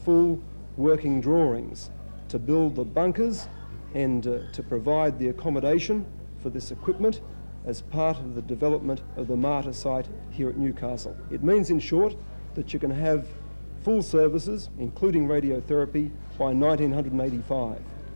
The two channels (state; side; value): inverted; both; correlation -1.00